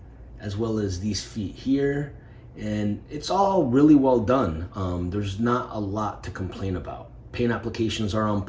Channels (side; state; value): both; identical; correlation 1.00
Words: as well as these feet here. And it's all really well done. There's not a lot to complain about. Paint applications are on